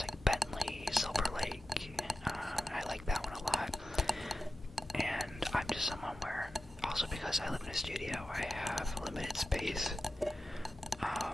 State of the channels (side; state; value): both; normal; correlation 0.93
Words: like Bentley Silver Lake. I like that one a lot. And I'm just someone where, also because I live in a studio, I have limited space.